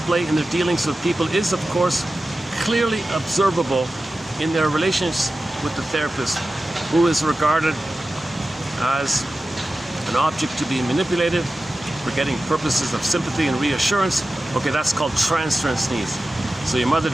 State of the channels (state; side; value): normal; both; correlation 0.94